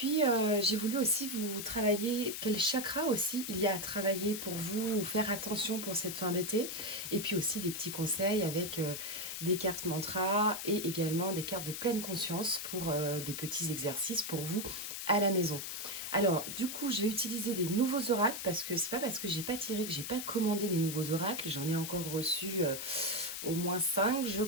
j'ai voulu aussi vous travailler quel chakra aussi il y a à travailler pour vous ou faire attention pour cette fin d'été. Et puis aussi des petits conseils avec des cartes mantra et également des cartes de pleine conscience pour des petits exercices pour vous à la maison. Alors, du coup, je vais utiliser des nouveaux oracles parce que c'est pas parce que j'ai pas tiré que j'ai pas commandé des nouveaux oracles. J'en ai encore reçu au moins 5, je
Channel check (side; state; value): left; noise; hiss, 6 dB below the sound